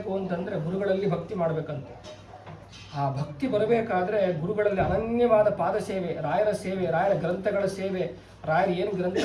ಅಂತಂದರೆ ಗುರುಗಳಲ್ಲಿ ಭಕ್ತಿ ಮಾಡಬೇಕಂತ. ಆ ಭಕ್ತಿ ಬರಬೇಕಾದ್ರೆ ಗುರುಗಳಲ್ಲಿ ಅನನ್ಯವಾದ ಪಾದ ಸೇವೆ, ರಾಯರ ಸೇವೆ, ರಾಯರ ಗ್ರಂಥಗಳ ಸೇವೆ, ರಾಯರು ಏನು ಗ್ರಂಥ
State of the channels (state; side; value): identical; both; correlation 1.00